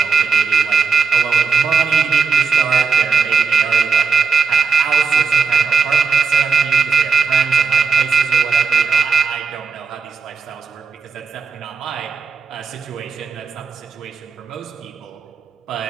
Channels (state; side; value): quieter; left; 5.2 dB